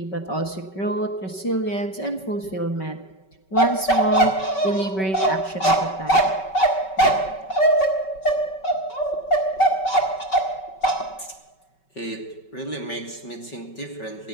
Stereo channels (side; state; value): right; late; 5.3 ms